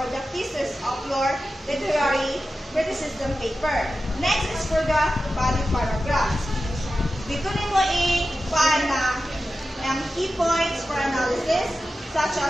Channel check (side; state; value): both; normal; correlation 0.93